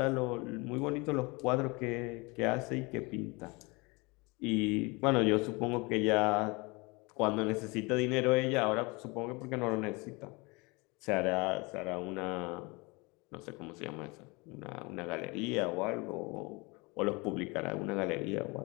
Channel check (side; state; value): right; quieter; 26.7 dB